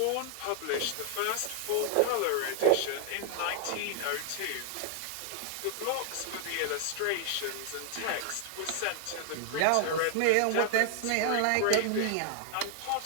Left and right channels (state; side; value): different; both; correlation 0.00